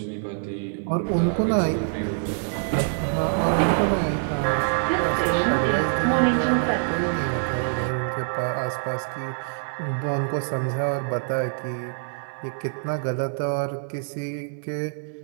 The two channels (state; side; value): silent; left; digital silence